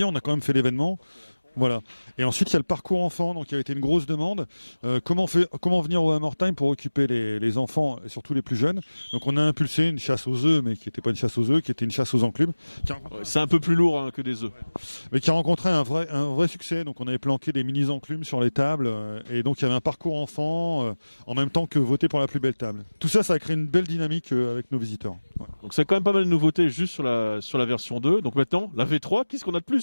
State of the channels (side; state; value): both; inverted; correlation -1.00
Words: on a quand même fait l'événement. Voilà. Et ensuite, il y a le parcours enfant, donc il a été une grosse demande. Comment venir au Hammer Time pour occuper les enfants, et surtout les plus jeunes. Donc on a impulsé une chasse aux œufs, mais qui n'était pas une chasse aux œufs, qui était une chasse aux enclumes. C'est un peu plus lourd que des œufs. Mais qui a rencontré un vrai succès. Donc on avait planqué des mini-enclumes sur les tables. Et donc il y avait un parcours enfant, en même temps que voter pour la plus belle table. Tout ça, ça a créé une belle dynamique avec nos visiteurs. Ouais. Donc c'est quand même pas mal de nouveautés juste sur la version 2. Donc maintenant, la V3, qu'est-ce qu'on a de